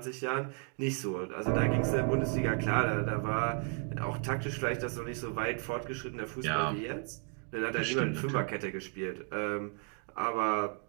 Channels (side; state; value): left; quieter; 37.5 dB